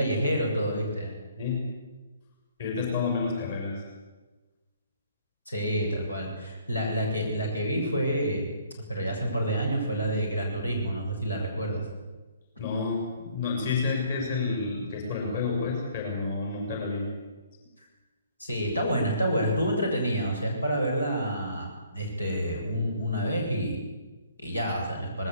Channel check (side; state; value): both; inverted; correlation -0.60